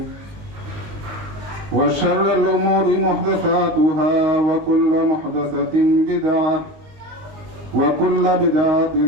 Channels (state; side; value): late; left; 19 ms